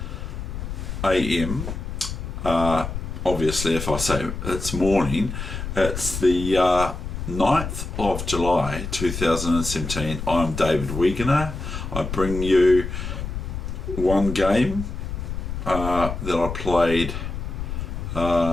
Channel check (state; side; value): noise; left; rumble, 6 dB below the sound